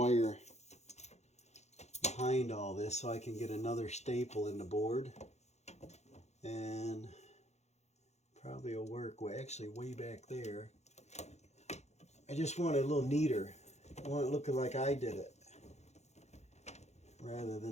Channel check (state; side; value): late; right; 0.32 ms